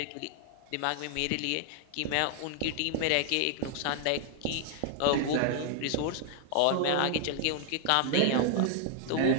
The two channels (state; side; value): different; both; correlation 0.00